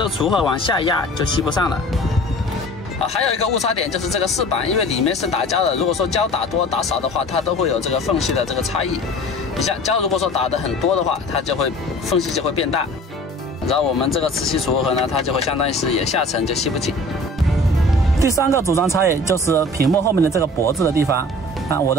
个除锷往下压就吸不上了。还有一个误差点就是这个饰板，因为里面是打胶的，如果说胶打多打少的话，它都会有这个缝隙的这个差异。你像胶如果说打的很多的话，它就会缝隙就会变大，然后我们这个磁吸除锷呢，它就会相当于是也下沉就吸不紧。第三个组装差异就是屏幕后面的这个脖子的地方。我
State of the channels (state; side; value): normal; both; correlation 0.44